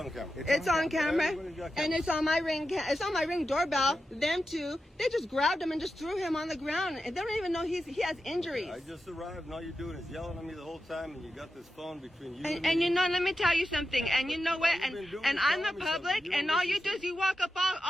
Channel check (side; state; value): both; normal; correlation 0.90